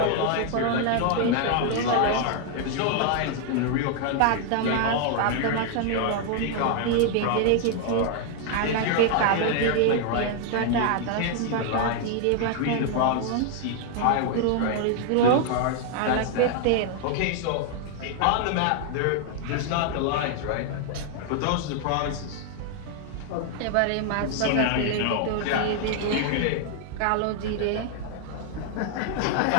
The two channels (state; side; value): different; both; correlation 0.00